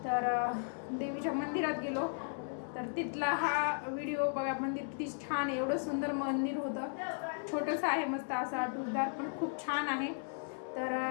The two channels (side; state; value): right; silent; digital silence